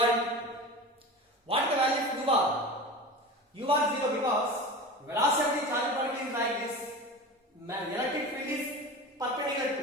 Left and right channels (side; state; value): both; normal; correlation 0.31